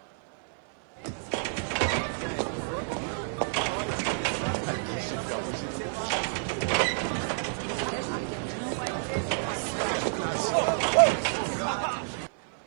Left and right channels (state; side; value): silent; left; 58 dB below the other